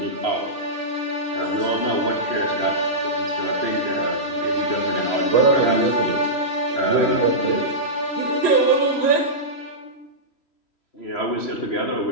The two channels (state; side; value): late; right; 3.1 ms